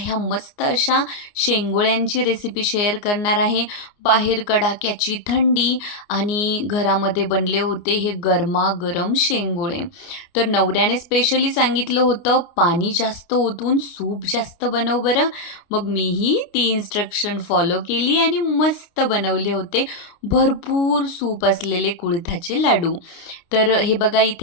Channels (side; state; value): right; late; 29 ms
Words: मस्त अशा शेंगोळ्यांची रेसिपी शेअर करणार आहे. बाहेर कडाक्याची थंडी आणि घरामध्ये बनले होते हे गरमागरम शेंगोळे. तर नवऱ्याने स्पेशली सांगितलं होतं पाणी जास्त ओतून सूप जास्त बनव बरं. मग मीही ती इन्स्ट्रक्शन फॉलो केली आणि मस्त बनवले होते भरपूर सूप असलेले कुळिथाचे लाडू. तर हे बघा